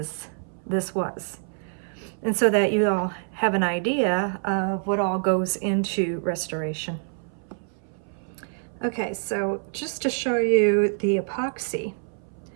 this was. And so that you all have an idea of what all goes into restoration. Okay, so just to show you the epoxy,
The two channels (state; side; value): silent; left; 61 dB below the other